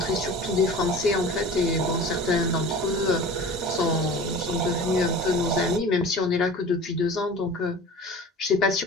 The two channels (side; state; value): both; normal; correlation 0.40